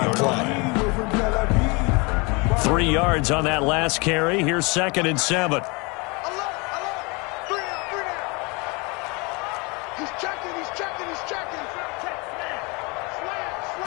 play? 3 yards on that last carry. Here's 2nd and 7.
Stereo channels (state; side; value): quieter; right; 28.6 dB